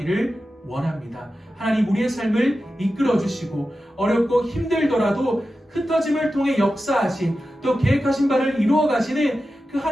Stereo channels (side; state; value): both; normal; correlation 0.92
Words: 원합니다. 하나님, 우리의 삶을 이끌어 주시고 어렵고 힘들더라도 흩어짐을 통해 역사하신 또 계획하신 바를 이루어 가시는 그